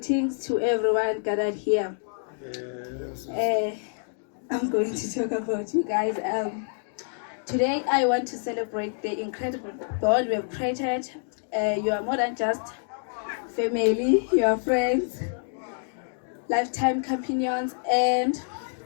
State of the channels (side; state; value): right; silent; 60 dB below the other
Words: to everyone gathered here. I'm going to talk about you guys. Today, I want to celebrate the incredible bond we have created. You are more than just family, you are friends, lifetime companions, and